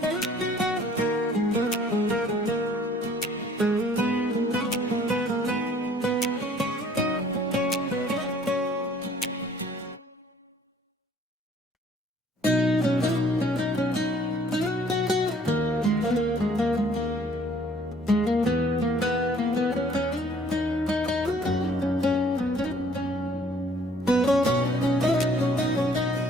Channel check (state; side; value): normal; both; correlation 0.58